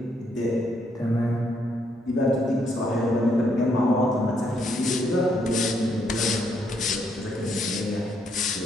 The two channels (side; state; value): both; normal; correlation 0.73